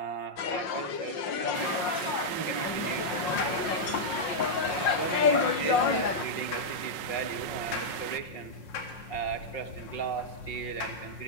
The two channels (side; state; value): right; late; 5.4 ms